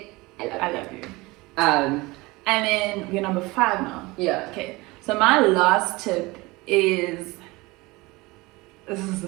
I love you. And then we're number 5 now. Yeah. Okay. So my last tip is, this is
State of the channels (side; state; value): left; quieter; 22.4 dB